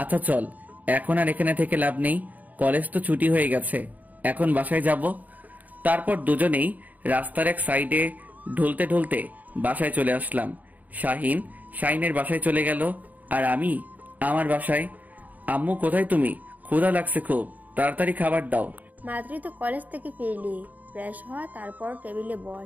আচ্ছা চল, এখন আর এখানে থেকে লাভ নেই, কলেজ তো ছুটি হয়ে গেছে, এখন বাসায় যাব। তারপর দুজনেই রাস্তার এক সাইডে ঢুলতে ঢুলতে বাসায় চলে আসলাম। শাহিনের বাসায় চলে গেল, আর আমি আমার বাসায়। আম্মু কোথায় তুমি? ক্ষুধা লাগছে খুব, তাড়াতাড়ি খাবার দাও। মাত্রই তো কলেজ থেকে ফিরলি, ফ্রেশ হওয়া, তারপর টেবিলে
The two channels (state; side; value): late; left; 0.078 ms